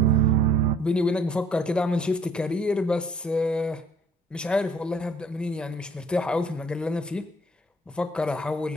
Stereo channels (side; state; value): both; normal; correlation 0.57